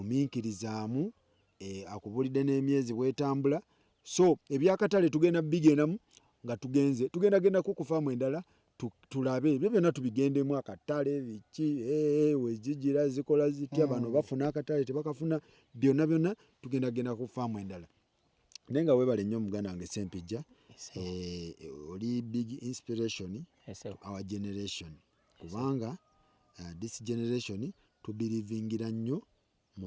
Akubulidde n'emyezi bwetambula. So ebyakatale tugenda bigendamu nga tugenda ku faamu endala tulabe ebyo byonna tubigendemu akatale biki wezigira zikola zitya bano bafuna akatale tebakafuna byonna tugenda ku faamu endala. Naye nga weebale nnyo muganda wange Sempijja oli big inspiration to our generation kubanga this generation tubirivingira nnyo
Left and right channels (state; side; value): identical; both; correlation 1.00